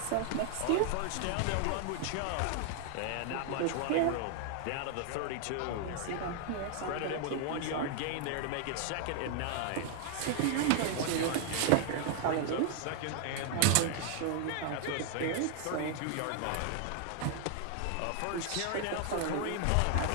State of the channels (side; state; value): both; different; correlation 0.00